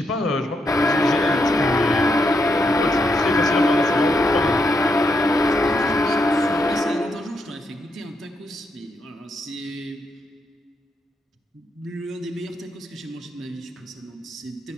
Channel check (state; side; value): normal; both; correlation 0.80